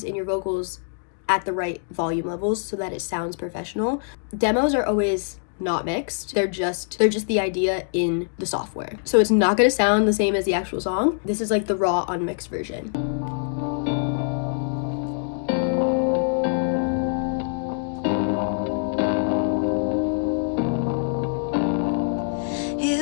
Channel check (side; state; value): right; silent; digital silence